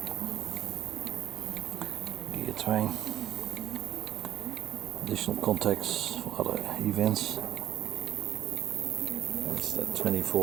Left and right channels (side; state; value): left; quieter; 12.0 dB